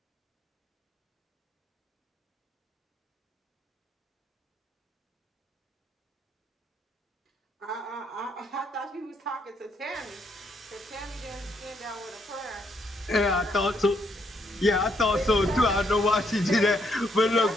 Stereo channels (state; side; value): normal; both; correlation 0.74